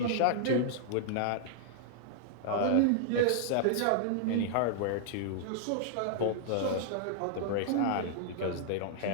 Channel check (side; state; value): both; different; correlation -0.01